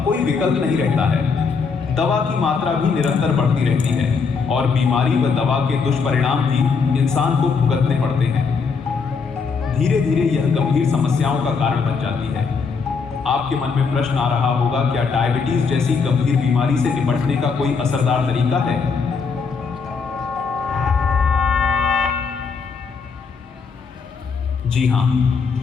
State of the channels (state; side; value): quieter; right; 5.3 dB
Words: कोई विकल्प नहीं रहता है। दवा की मात्रा भी निरंतर बढ़ती रहती है और बीमारी व दवा के दुष्परिणाम भी इंसान को भुगतने पड़ते हैं। धीरे धीरे यह गंभीर समस्याओं का कारण बन जाती है। आपके मन में प्रश्न आ रहा होगा, क्या डायबिटीज जैसी गंभीर बीमारी से निपटने का कोई असरदार तरीका है? जी हाँ,